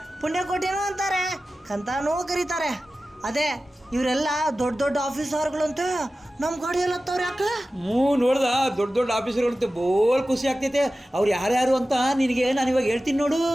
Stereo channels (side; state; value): both; normal; correlation 0.95